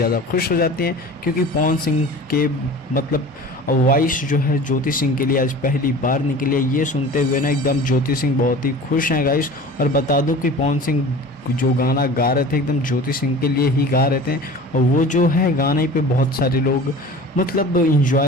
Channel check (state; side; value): normal; both; correlation 0.39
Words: खुश हो जाती हैं, क्योंकि पवन सिंह के मतलब वॉइस जो है ज्योति सिंह के लिए आज पहली बार निकली है। ये सुनते हुए ना एकदम ज्योति सिंह बहुत ही खुश हैं गाइस। और बता दूं कि पवन सिंह जो गाना गा रहे थे एकदम ज्योति सिंह के लिए ही गा रहे थे, और वो जो है गाने पे बहुत सारे लोग मतलब